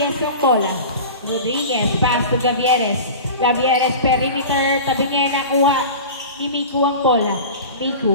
yung bola. Rodriguez, pass to Gavieres. Gavieres, perimeter, tabi niya nakuha ni Miku ang bola.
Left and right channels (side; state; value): both; inverted; correlation -0.34